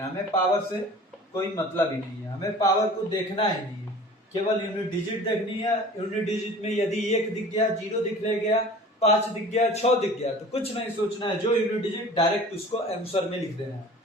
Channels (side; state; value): both; normal; correlation 0.43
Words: है। हमें पावर से कोई मतलब ही नहीं है, हमें पावर को देखना ही नहीं है, केवल यूनिट डिजिट देखनी है। यूनिट डिजिट में यदि 1 दिख गया, 0 दिख गया, 5 दिख गया, 6 दिख गया तो कुछ नहीं सोचना है, जो यूनिट डिजिट डायरेक्ट उसको आंसर में लिख देना है।